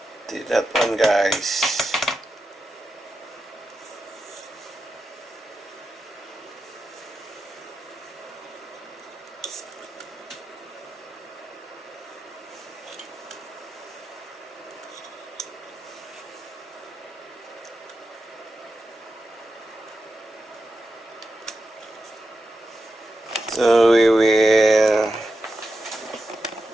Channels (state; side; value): normal; both; correlation 0.89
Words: did that one, guys. So we will